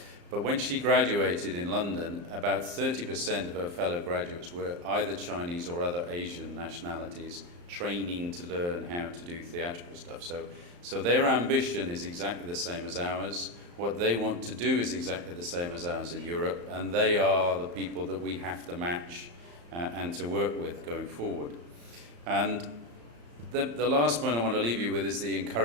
But when she graduated in London, about 30% of her fellow graduates were either Chinese or other Asian nationalities, training to learn how to do theatrical stuff. So their ambition is exactly the same as ours. What they want to do is exactly the same as ours in Europe, and they are the people that we have to match and to work with going forward. And the last point I want to leave you with is the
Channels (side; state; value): left; late; 35 ms